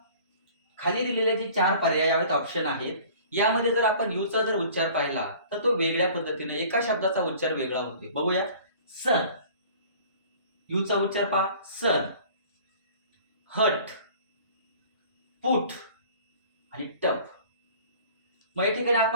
खाली दिलेले जे 4 पर्यायात ऑप्शन आहेत यामध्ये जर आपण यूचा जर उच्चार पाहिला तर तो वेगळ्या पद्धतीने एका शब्दाचा उच्चार वेगळा होतोय. बघूया. सन, यूचा उच्चार पहा, सन. हट, पुट आणि टप. मग या ठिकाणी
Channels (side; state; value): both; inverted; correlation -0.48